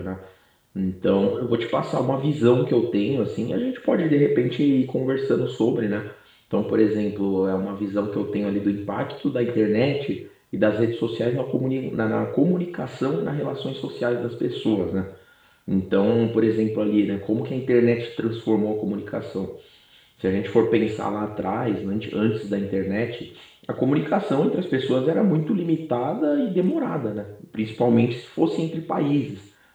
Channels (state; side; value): identical; both; correlation 1.00